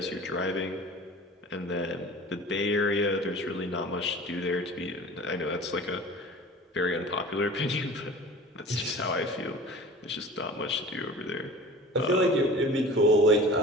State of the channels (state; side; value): normal; both; correlation 0.41